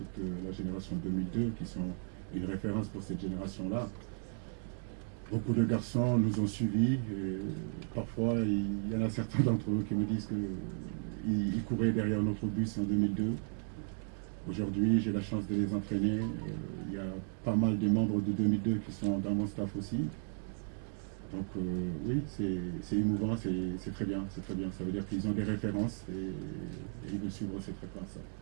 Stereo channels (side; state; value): left; silent; 54 dB below the other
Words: la génération 2002, qui sont une référence pour cette génération-là. Beaucoup de garçons nous ont suivis, et parfois il y en a certains d'entre eux qui me disent qu'ils couraient derrière notre bus en 2002. Aujourd'hui, j'ai la chance de les entraîner. Il y a pas mal de membres de 2002 qui sont dans mon staff aussi. Donc oui, c'est émouvant, c'est très bien, c'est très bien. Ça veut dire qu'ils ont des références et ils veulent suivre cette